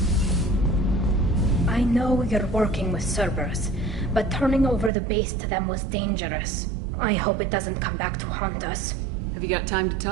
I know you're working with Cerberus, but turning over the base to them was dangerous. I hope it doesn't come back to haunt us. Have you got time to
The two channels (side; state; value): left; drops out; at 4.9 s